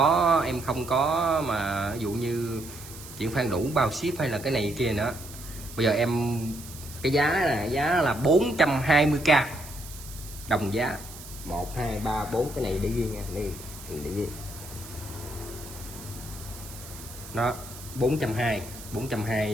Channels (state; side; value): noise; right; hiss, 15 dB below the sound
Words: có mà ví dụ như chuyển khoản đủ bao ship hay là cái này kia nữa. Bây giờ em cái giá là 420k đồng giá 1 2 3 4 cái này để ghi nha, đây để ghi. Nó